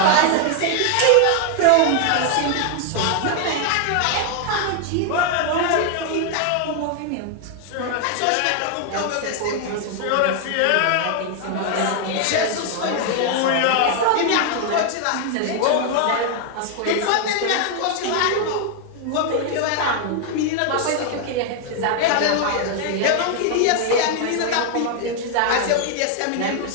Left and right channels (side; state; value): both; different; correlation 0.01